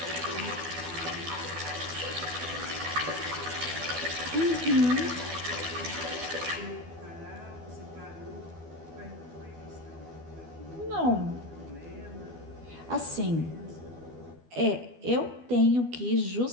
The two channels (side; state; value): left; late; 12 ms